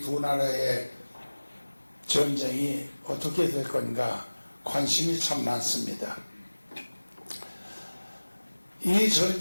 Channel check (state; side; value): inverted; both; correlation -1.00